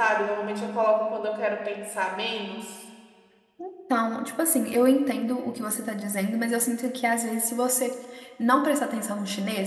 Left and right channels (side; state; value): both; identical; correlation 1.00